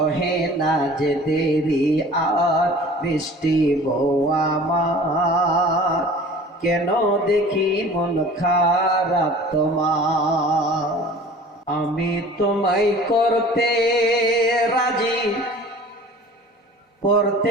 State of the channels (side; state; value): both; normal; correlation 0.45